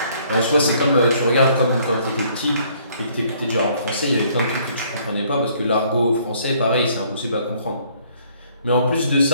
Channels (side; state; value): both; inverted; correlation -0.63